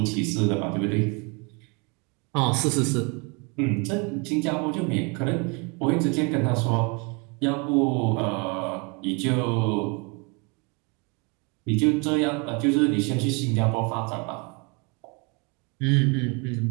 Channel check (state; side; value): quieter; left; 31.4 dB